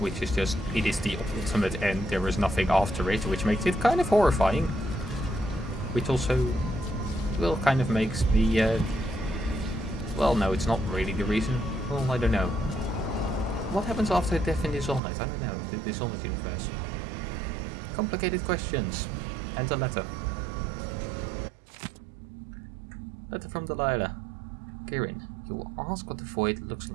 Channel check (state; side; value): drops out; left; at 15.0 s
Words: is just, it is the ultimate end, there is nothing after it, which makes it kind of horrifying. Which also, well, kind of makes me, well, no, it's not really the reason. Well, I don't know. What happens after death in Dishonored? I don't know. The Dishonored universe. Complicated questions. And a letter. Letter from Delilah. Kirin, you will ask what the void looks